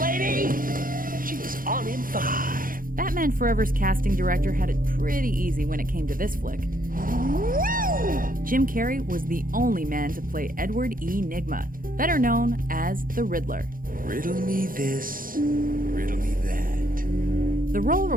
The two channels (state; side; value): late; left; 0.41 ms